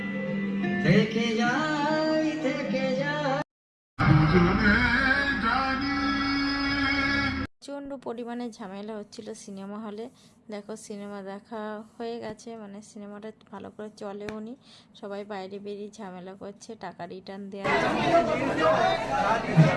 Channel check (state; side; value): identical; both; correlation 1.00